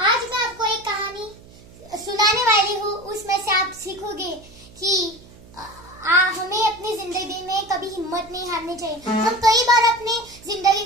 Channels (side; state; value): right; noise; hum, 22 dB below the sound